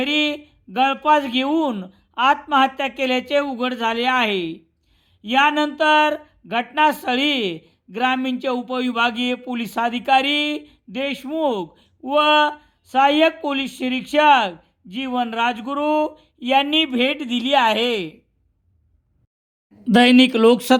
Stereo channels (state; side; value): identical; both; correlation 1.00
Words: गळफास घेऊन आत्महत्या केल्याचे उघड झाले आहे। यानंतर घटनास्थळी ग्रामीणचे उपविभागीय पोलीस अधिकारी देशमुख व सहाय्यक पोलीस निरीक्षक जीवन राजगुरू यांनी भेट दिली आहे। दैनिक